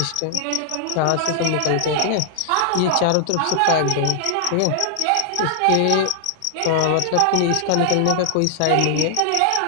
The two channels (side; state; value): both; different; correlation 0.00